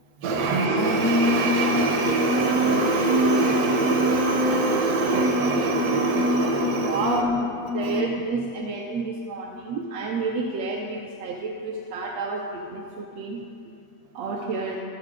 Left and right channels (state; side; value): late; left; 8.3 ms